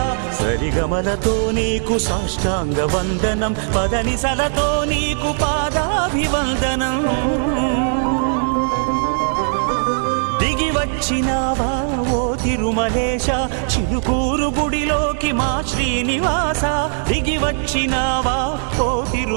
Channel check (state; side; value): silent; left; digital silence